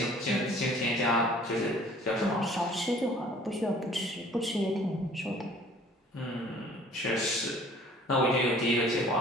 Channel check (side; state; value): both; normal; correlation 0.52